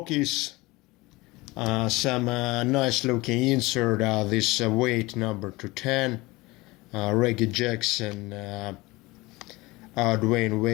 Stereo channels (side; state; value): right; quieter; 21.8 dB